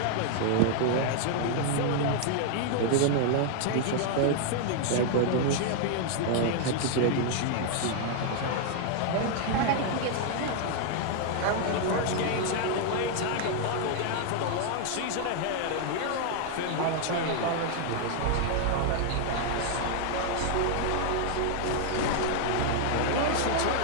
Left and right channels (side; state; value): both; different; correlation 0.00